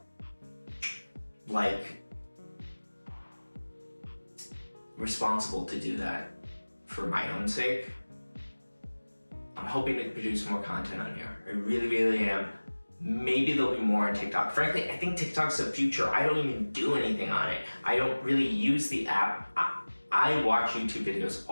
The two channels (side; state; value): both; inverted; correlation -1.00